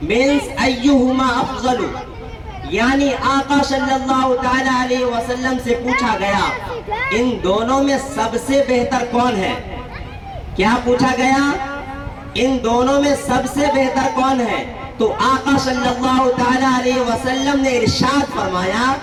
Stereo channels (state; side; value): identical; both; correlation 1.00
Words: means ayyuhuma afzalu، یعنی آقا صلی اللہ تعالی علیہ وسلم سے پوچھا گیا ان دونوں میں سب سے بہتر کون ہے؟ کیا پوچھا گیا؟ ان دونوں میں سب سے بہتر کون ہے؟ تو آقا صلی اللہ تعالی علیہ وسلم نے ارشاد فرمایا